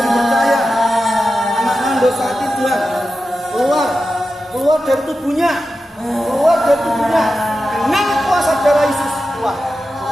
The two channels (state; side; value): normal; both; correlation 0.92